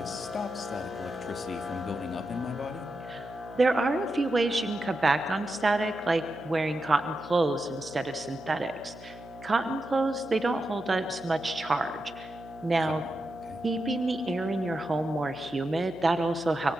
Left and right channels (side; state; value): right; noise; hum, 19 dB below the sound